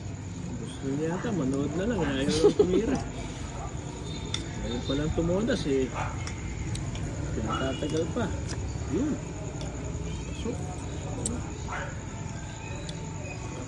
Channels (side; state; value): both; identical; correlation 1.00